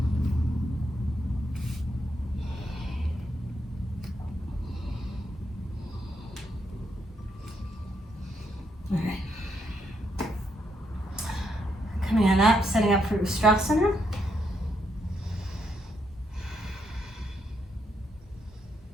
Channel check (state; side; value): normal; both; correlation 0.78